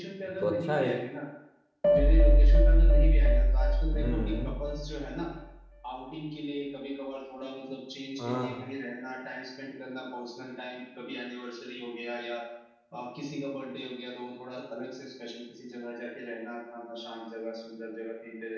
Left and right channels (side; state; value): both; identical; correlation 1.00